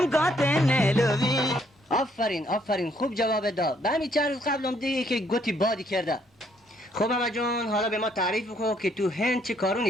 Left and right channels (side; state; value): both; normal; correlation 0.68